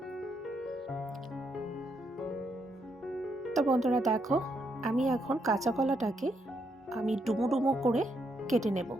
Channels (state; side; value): normal; both; correlation 0.77